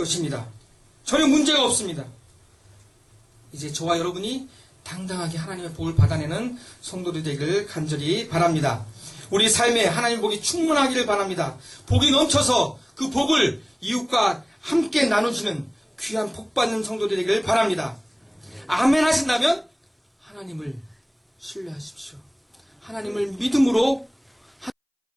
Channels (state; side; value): identical; both; correlation 1.00